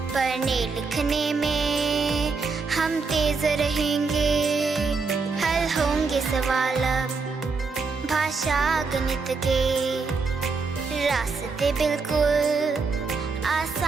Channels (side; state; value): left; quieter; 4.5 dB